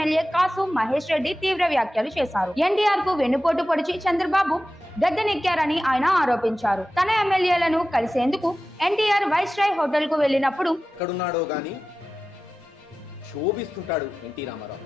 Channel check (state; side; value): normal; both; correlation 0.94